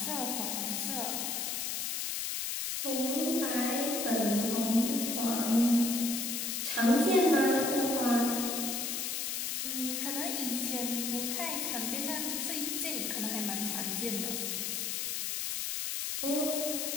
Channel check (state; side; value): noise; left; hiss, 1 dB below the sound